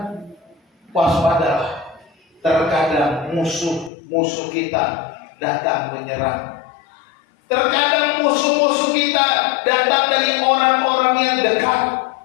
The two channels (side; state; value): right; drops out; at 3.9 s